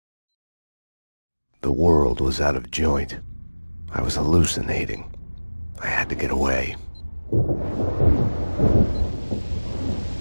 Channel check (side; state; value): both; inverted; correlation -1.00